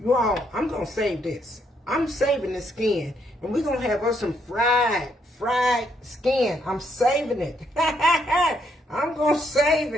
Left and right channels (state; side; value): normal; both; correlation 0.74